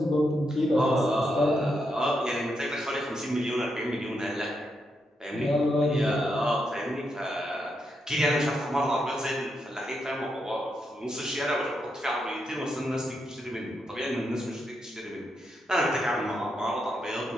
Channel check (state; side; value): normal; both; correlation 0.82